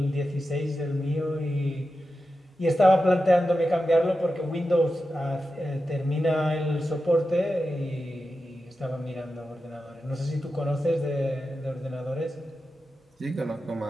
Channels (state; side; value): normal; both; correlation 0.91